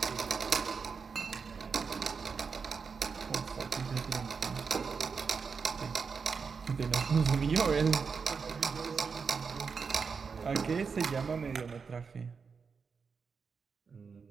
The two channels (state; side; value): quieter; left; 5.5 dB